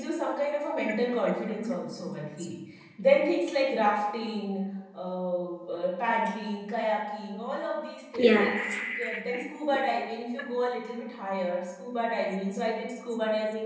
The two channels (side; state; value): both; identical; correlation 1.00